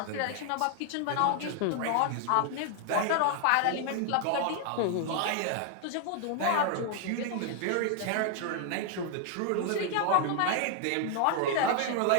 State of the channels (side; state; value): both; different; correlation 0.00